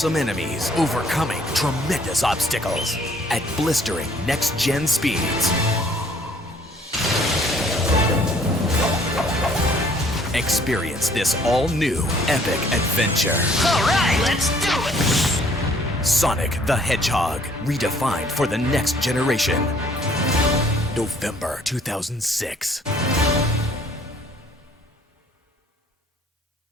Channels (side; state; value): both; normal; correlation 0.60